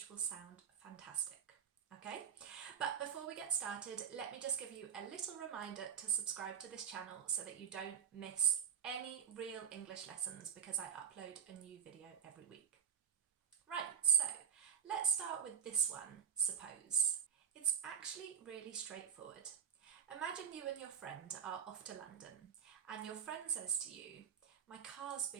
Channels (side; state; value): left; quieter; 8.0 dB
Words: will sound fantastic. Okay, but before we get started, let me just give you a little reminder to subscribe to this channel so that you don't miss any real English lessons because I upload a new video every week. Right, so let's start with this one, suppose. It's actually really straightforward. Imagine you and your friend are off to London and your friend says to you, "My car's